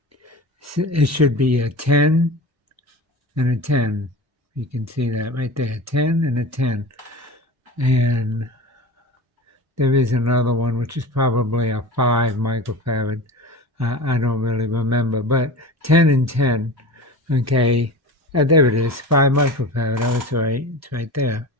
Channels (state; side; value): normal; both; correlation 0.32